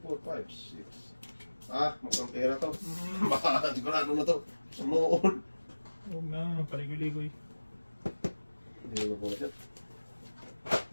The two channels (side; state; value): both; inverted; correlation -1.00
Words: 4, 5, 6. Mukhang pera to. Baka sigurado na to. Sumuon. Huwag na, paligoy-ligoy. Hindi mo po siya.